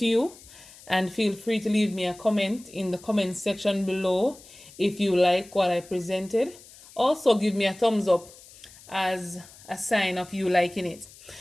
you, and feel free to leave me a comment in the comment section below if you like what I presented. Also, give me a thumbs up as a sign of you liking it.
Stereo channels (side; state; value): left; noise; hiss, 21 dB below the sound